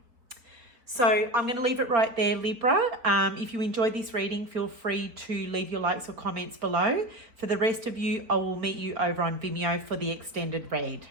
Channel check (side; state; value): left; late; 4.0 ms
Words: So I'm going to leave it right there, Libra. If you enjoyed this reading, feel free to leave your likes or comments below. For the rest of you, I will meet you over on Vimeo for the extended read.